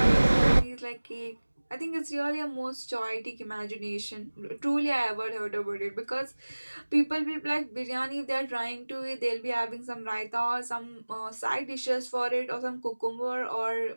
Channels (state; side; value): inverted; both; correlation -1.00